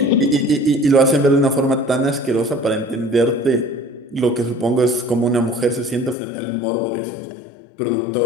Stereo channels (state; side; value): drops out; right; at 6.2 s